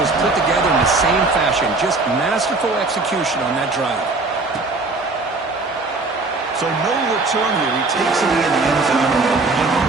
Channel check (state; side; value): quieter; left; 3.5 dB